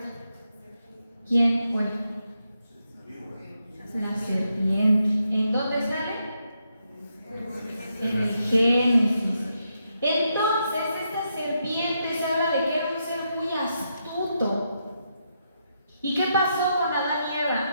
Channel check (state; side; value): inverted; both; correlation -0.81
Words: ¿Quién fue? La serpiente. ¿En dónde sale? En el Génesis. Entonces, esta serpiente se habla de que era un ser muy astuto. ¿Y qué pasó con Adán y Eva?